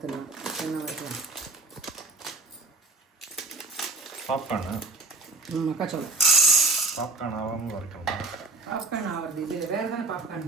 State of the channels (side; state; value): left; quieter; 3.4 dB